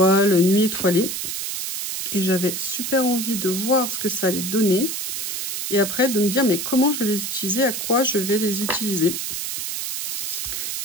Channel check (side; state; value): right; noise; hiss, 4 dB below the sound